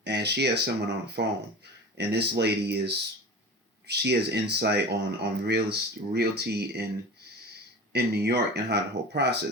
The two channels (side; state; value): both; normal; correlation 0.34